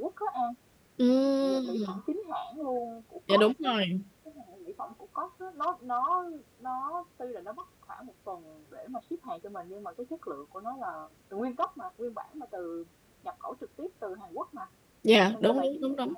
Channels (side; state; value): both; identical; correlation 1.00